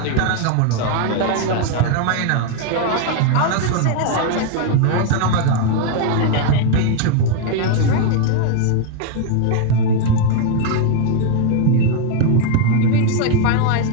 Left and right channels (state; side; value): different; both; correlation 0.01